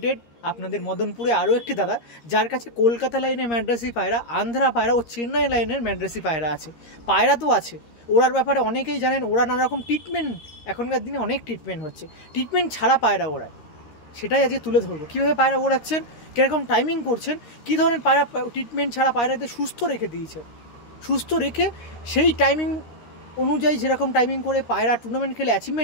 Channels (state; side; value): late; right; 13 ms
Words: আপনাদের মদনপুরে আরও একটি দাদা, যার কাছে কলকাতা লাইনের ম্যাড্রাসি পায়রা, আন্ধ্রা পায়রা ও চেন্নাই লাইনের ম্যাড্রাসি পায়রা আছে। পায়রা তো আছে, ওড়ার ব্যাপারে অনেকেই জানেন। ওরা নানা রকম ট্রিটমেন্ট, এখনকার দিনে অনেক ট্রিটমেন্ট হচ্ছে, ট্রিটমেন্ট ছাড়া পায়রা ওড়ায়, সেটাই আজকে তুলে ধরবো। কীভাবে পায়রা ওড়াচ্ছেন, কীরকম টাইমিং করছেন, কী ধরনের পায়রা ট্রিটমেন্ট ছাড়া পায়রাদের সুস্থ রেখে দিয়েছে, সুস্থ রেখে সেই টাইমিং অনুযায়ী যেরকম টাইমিং করে পায়রা টুর্নামেন্ট খেলে